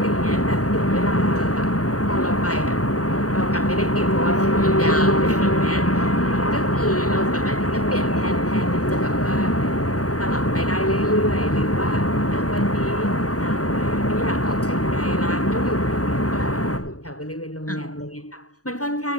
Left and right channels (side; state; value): right; late; 0.66 ms